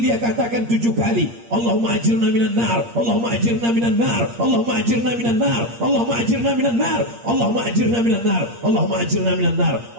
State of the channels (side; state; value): left; late; 8.6 ms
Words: dia katakan 7 kali, Allahumma ajirna minan nar, Allahumma ajirna minan nar, Allahumma ajirna minan nar, Allahumma ajirna minan nar, Allahumma ajirna minan nar, Allahumma ajirna minan nar,